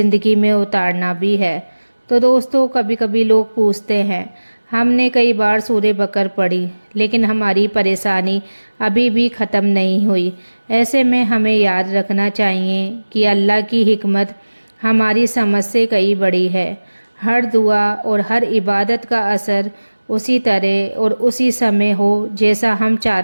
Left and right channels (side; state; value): both; inverted; correlation -1.00